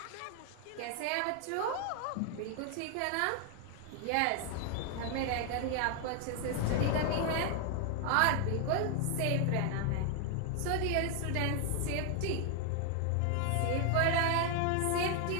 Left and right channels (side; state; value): both; different; correlation 0.00